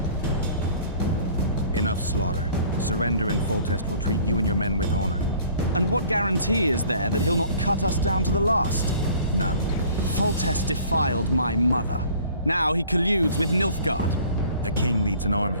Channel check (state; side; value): inverted; both; correlation -0.51